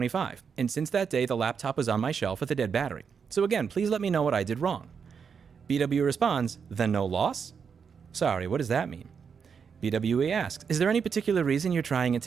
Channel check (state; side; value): quieter; left; 6.4 dB